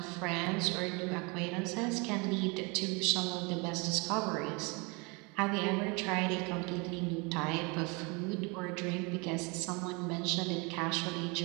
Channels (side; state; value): left; quieter; 29.4 dB